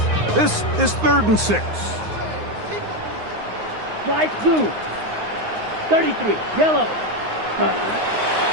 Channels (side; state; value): left; late; 9.6 ms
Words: This is 3rd and 6. Light blue. 33. Yellow.